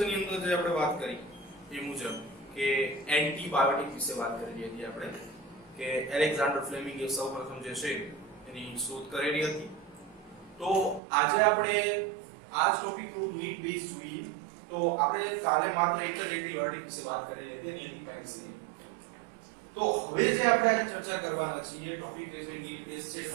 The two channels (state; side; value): drops out; left; at 11.0 s